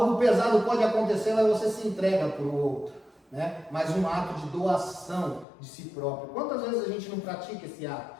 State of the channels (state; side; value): drops out; right; at 5.5 s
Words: pesado pode acontecer, mas você se entrega para o outro. Né? Mas um ato de doação de si próprio. Quantas vezes a gente não pratica esse ato?